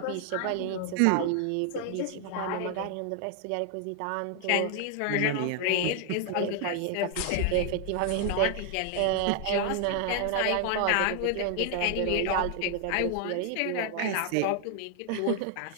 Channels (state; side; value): different; both; correlation 0.00